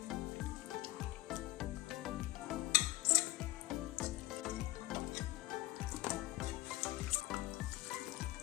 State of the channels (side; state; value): right; quieter; 18.0 dB